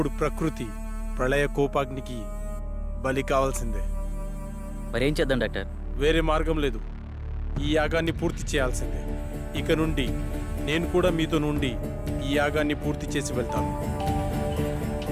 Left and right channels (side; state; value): both; identical; correlation 1.00